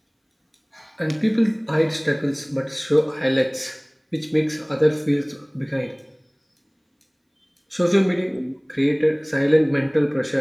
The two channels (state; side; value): identical; both; correlation 1.00